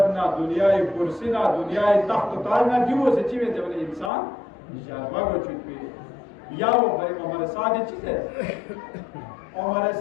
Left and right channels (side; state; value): right; drops out; at 4.1 s